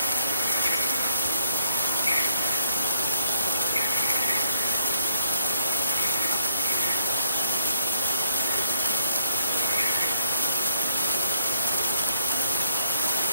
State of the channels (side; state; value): both; inverted; correlation -0.69